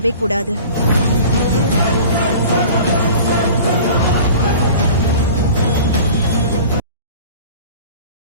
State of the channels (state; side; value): inverted; both; correlation -0.41